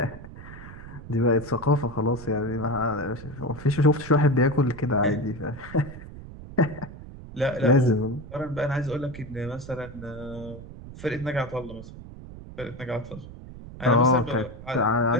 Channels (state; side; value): noise; right; rumble, 14 dB below the sound